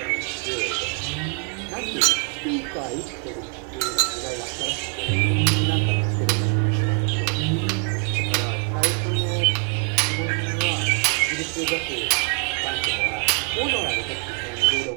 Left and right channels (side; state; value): left; quieter; 36.6 dB